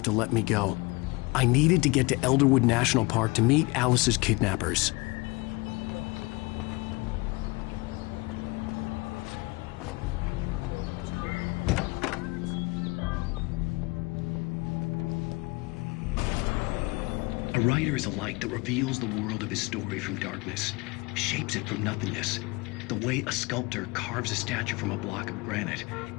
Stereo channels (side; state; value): right; quieter; 25.3 dB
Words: to let me go. I needed to get to Elderwood National Park to meet Alice's kidnappers. A writer is a light that reveals the world of his story from darkness, shapes it from nothingness. The way a sculptor carves a statue from a block of granite.